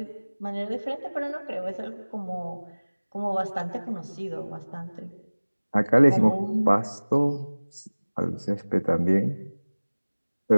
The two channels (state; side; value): inverted; both; correlation -1.00